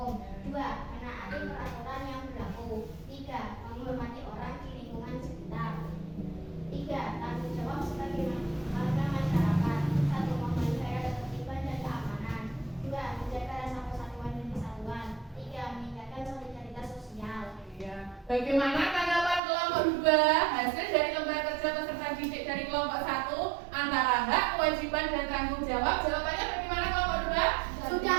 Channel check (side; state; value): left; drops out; at 19.4 s